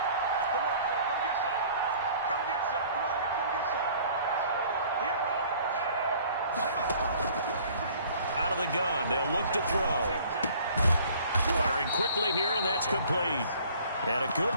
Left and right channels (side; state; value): both; inverted; correlation -0.53